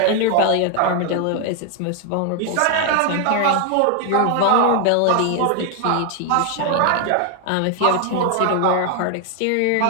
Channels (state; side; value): different; both; correlation 0.00